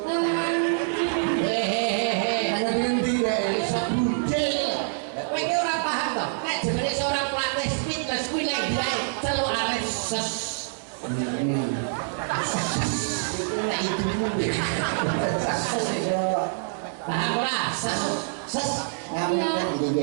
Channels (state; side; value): silent; left; 61 dB below the other